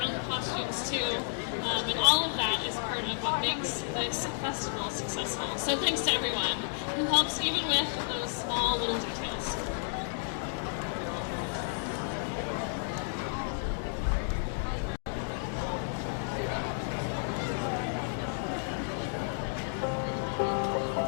own costumes too, and all of that is part of what makes this festival successful. So thanks to everyone who helps even with those small little details.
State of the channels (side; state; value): right; silent; digital silence